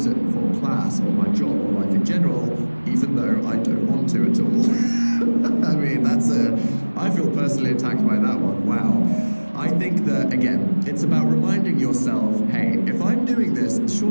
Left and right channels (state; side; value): inverted; both; correlation -1.00